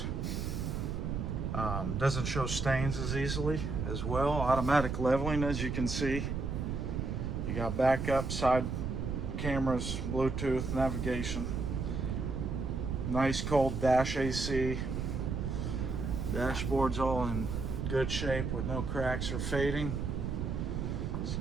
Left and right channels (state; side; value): noise; right; rumble, 2 dB below the sound